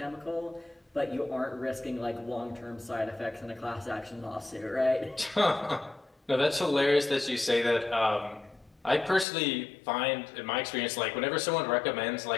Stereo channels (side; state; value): right; drops out; at 9.2 s